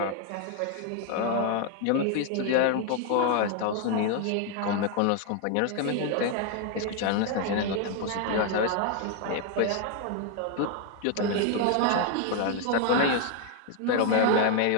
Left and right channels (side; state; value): both; different; correlation 0.01